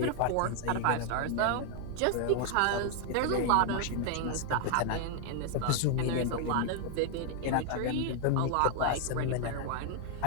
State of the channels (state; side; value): different; both; correlation 0.00